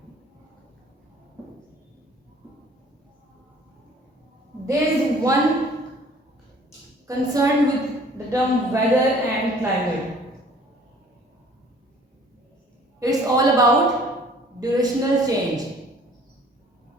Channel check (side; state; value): both; normal; correlation 0.54